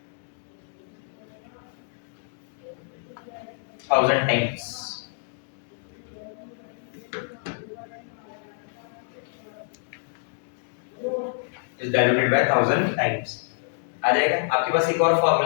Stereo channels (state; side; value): silent; right; digital silence